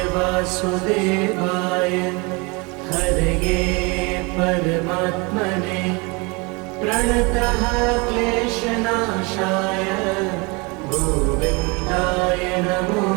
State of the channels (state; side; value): quieter; left; 28.0 dB